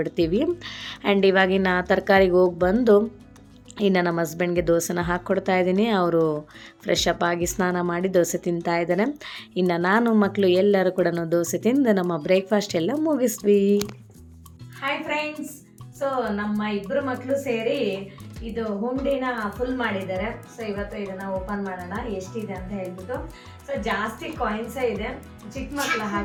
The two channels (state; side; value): identical; both; correlation 1.00